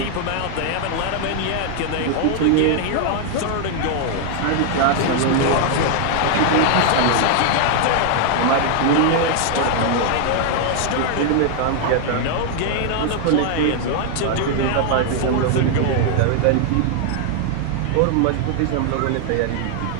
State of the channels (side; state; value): both; different; correlation 0.00